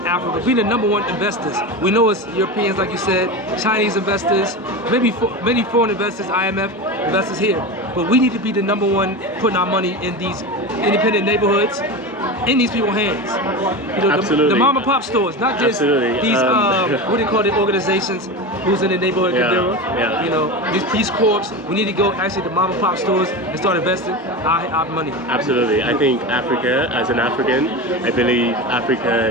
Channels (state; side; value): normal; both; correlation 0.24